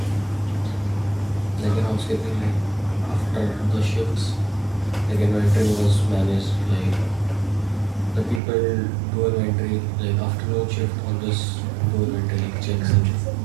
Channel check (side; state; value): left; drops out; at 8.4 s